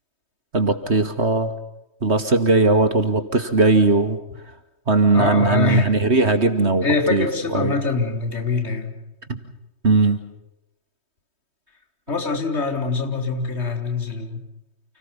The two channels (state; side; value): late; left; 3.2 ms